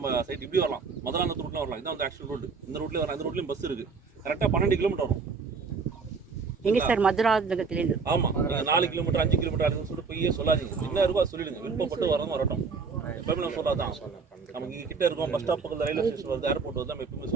சைட் இப்படி வரலாம், மதுராந்தகத்து ரூட்டில் வரலாம். இதான் வந்து ஆக்சுவல் ரூட். இந்த ரூட்லேயே வரலாம். இந்த ரூட்லேயும் பஸ் இருக்குது. கரெக்டாக 12 கிலோமீட்டர் வரும். எங்கே சார்? மதுராந்தகத்துலேருந்து. ஆமாம், 4 கிலோமீட்டர் 5 கிலோமீட்டர் அதுன்னு சொல்லிட்டு போய் சொல்லாதீங்க. என்ன இருக்கோ அதை சொல்லிடுங்க. விருப்பப்பட்டு வரட்டும். எப்பவுமே நம்ம சொல்லாதான் நமக்கு இங்கே கிட்ட இருக்கும். பஸ் ஸ்டாப் பக்கத்தில் ரயில்வே ஸ்டேஷன் வருது, ஏர்போர்ட் வந்து நம்ம எப்பவுமே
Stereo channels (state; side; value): quieter; left; 5.0 dB